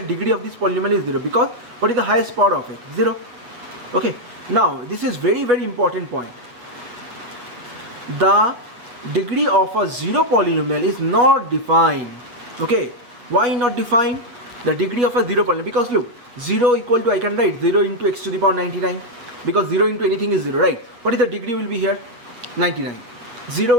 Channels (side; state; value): left; late; 8.7 ms